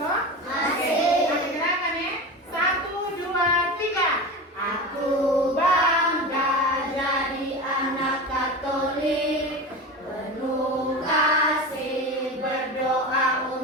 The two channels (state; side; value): normal; both; correlation 0.26